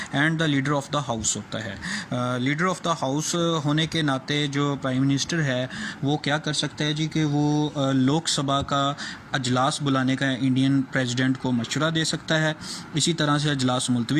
and the leader of the house होता है। लीडर ऑफ द हाउस होने के नाते जो प्राइम मिनिस्टर है वो क्या कर सकता है जी कि वो लोकसभा का अजलास बुलाने का इंडियन प्रेसिडेंट को मशवरा दे सकता है, इसी तरह से अजलास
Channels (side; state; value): both; identical; correlation 1.00